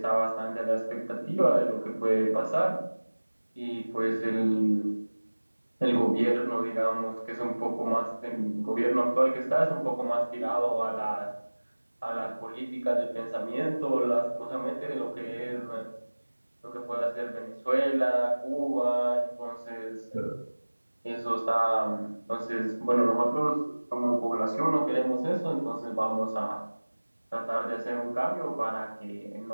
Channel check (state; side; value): inverted; both; correlation -1.00